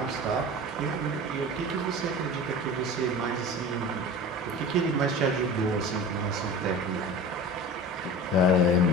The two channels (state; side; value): normal; both; correlation 0.35